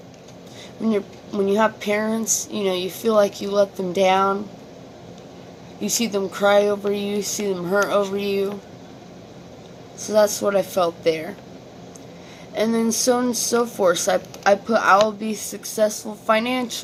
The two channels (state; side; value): identical; both; correlation 1.00